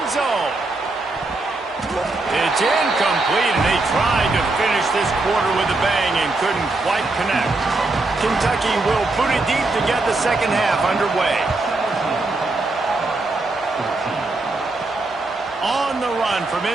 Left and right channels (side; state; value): left; quieter; 3.2 dB